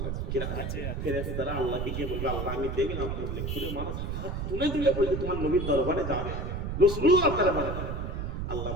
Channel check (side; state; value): right; noise; rumble, 3 dB below the sound